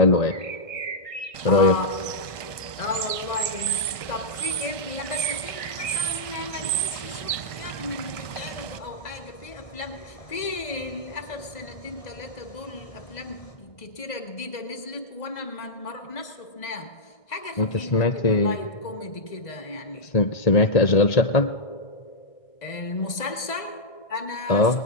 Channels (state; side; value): late; right; 1.6 ms